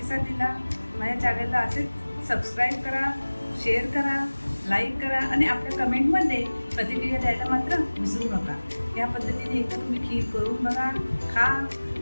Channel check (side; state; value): both; inverted; correlation -1.00